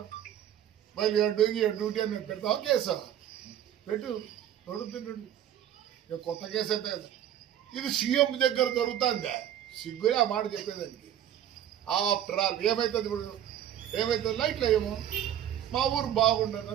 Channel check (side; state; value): left; quieter; 10.7 dB